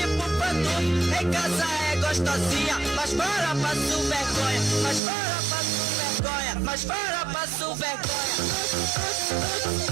pantu, em casa é gostosinha, mas fora passo vergonha, mas fora passo vergonha, mas fora passo vergonha.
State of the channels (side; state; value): left; drops out; at 5.0 s